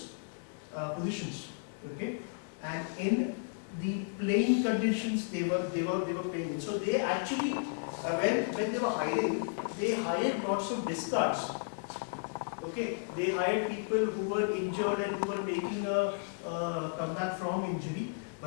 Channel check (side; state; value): right; silent; digital silence